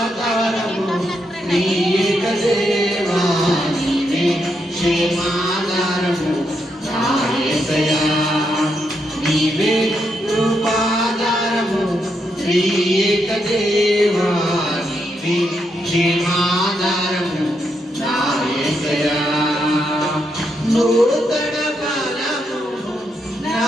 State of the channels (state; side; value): normal; both; correlation 0.80